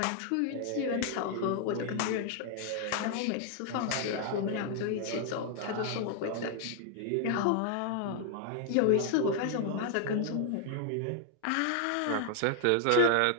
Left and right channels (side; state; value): both; different; correlation 0.00